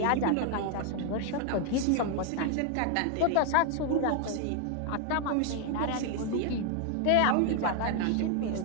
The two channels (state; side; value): different; both; correlation 0.00